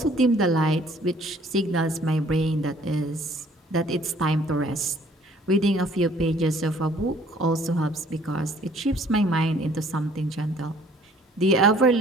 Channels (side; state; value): both; normal; correlation 0.57